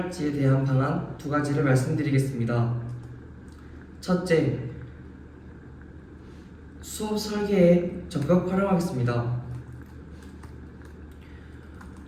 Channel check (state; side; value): identical; both; correlation 1.00